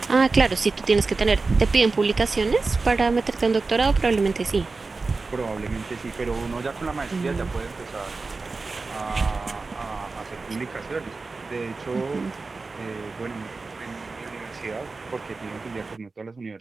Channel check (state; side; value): quieter; left; 3.9 dB